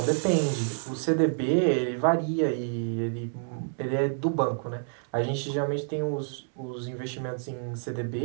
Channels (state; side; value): silent; left; digital silence